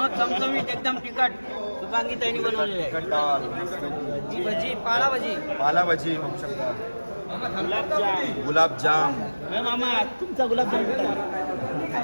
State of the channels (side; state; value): both; inverted; correlation -1.00